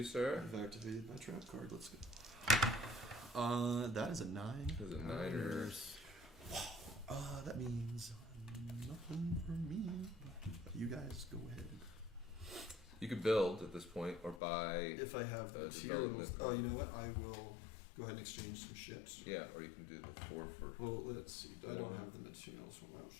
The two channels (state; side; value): drops out; right; at 14.4 s